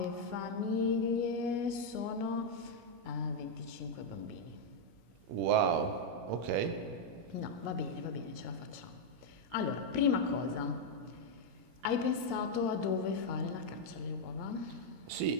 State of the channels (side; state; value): left; late; 17 ms